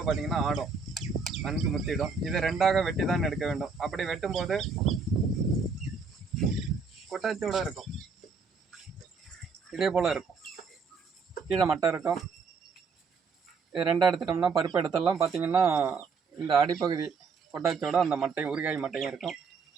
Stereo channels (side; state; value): left; quieter; 4.9 dB